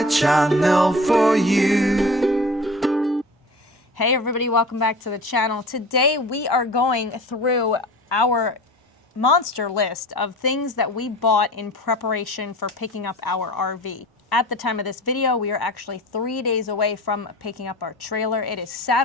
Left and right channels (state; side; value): normal; both; correlation 0.38